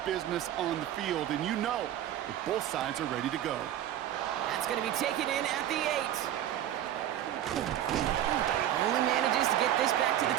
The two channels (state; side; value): quieter; left; 11.7 dB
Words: business on the field, and you know that both sides are ready to go. That's going to be taken in at the 8. Only manages to get this back to the